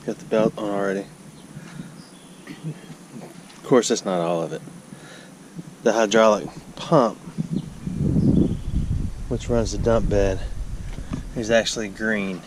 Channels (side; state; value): both; identical; correlation 1.00